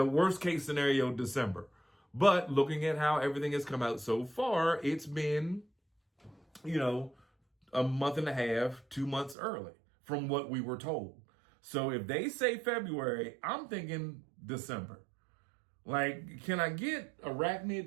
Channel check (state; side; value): drops out; left; at 9.3 s